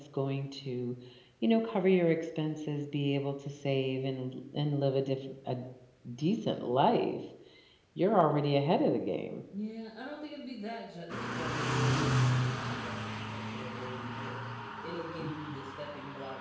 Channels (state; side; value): identical; both; correlation 1.00